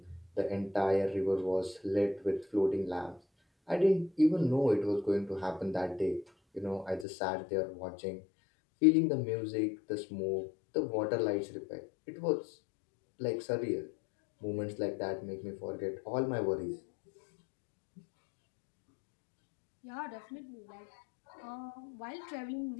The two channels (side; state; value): right; drops out; at 7.1 s